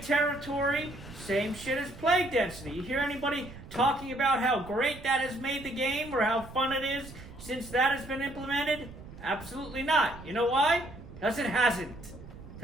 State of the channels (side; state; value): right; noise; rumble, 16 dB below the sound